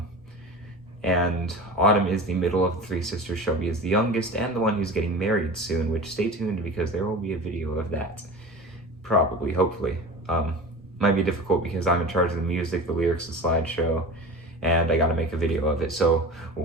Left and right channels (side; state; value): both; normal; correlation 0.34